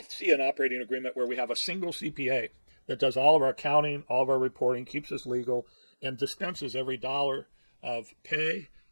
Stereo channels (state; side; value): inverted; both; correlation -1.00